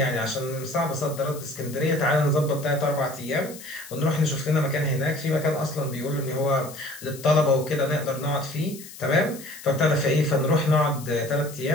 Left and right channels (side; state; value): left; noise; hiss, 16 dB below the sound